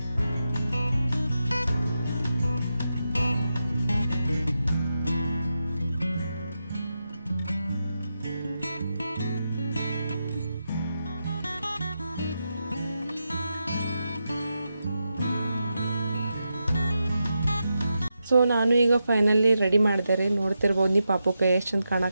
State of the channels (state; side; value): inverted; both; correlation -0.87